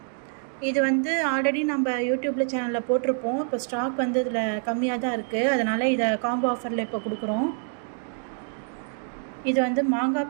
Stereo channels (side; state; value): left; silent; 61 dB below the other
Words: இது வந்து ஆல்ரெடி நம்ம யூடியூப்பில் சேனலில் போட்டிருப்போம். இப்போ ஸ்டாக் வந்து இதில் கம்மியாக தான் இருக்குது, அதனால் இதை காம்போ ஆஃபரில் இப்போ கொடுக்குறோம். இது வந்து மாங்காய்